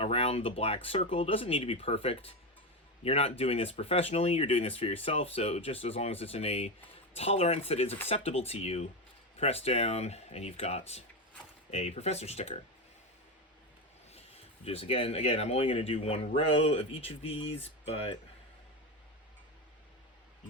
the black circle. Doesn't need to be perfect. You're not doing this professionally, you're doing this for yourself, so just as long as it's in a tolerance that is acceptable to you, press down, and you've got a professor sticker. Just again, I'm only going to do one row of each of these, but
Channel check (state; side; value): normal; both; correlation 0.15